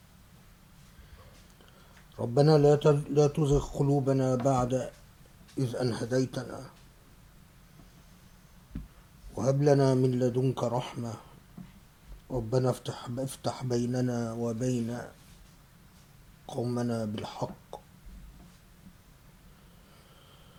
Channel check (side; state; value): both; identical; correlation 1.00